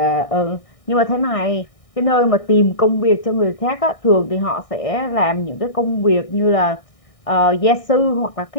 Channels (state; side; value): late; right; 1.6 ms